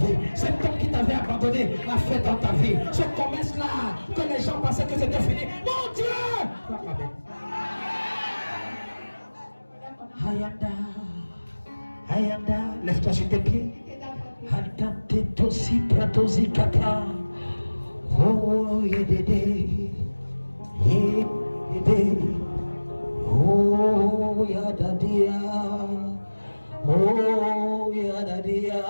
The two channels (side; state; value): both; inverted; correlation -1.00